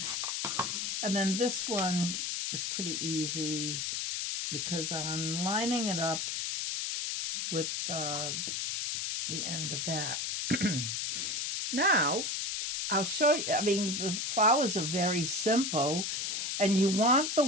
And then this one is pretty easy because I'm lining it up with the end of that. Now, I'll show you. I mean, the flowers are very simple, and you want the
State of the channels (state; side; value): noise; left; hiss, 2 dB below the sound